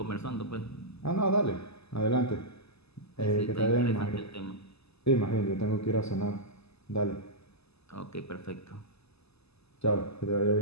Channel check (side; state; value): right; late; 0.79 ms